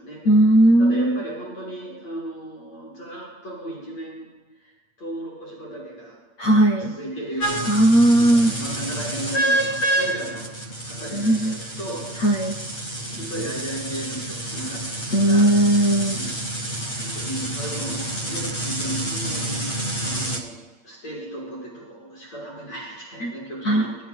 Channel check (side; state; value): right; late; 8.6 ms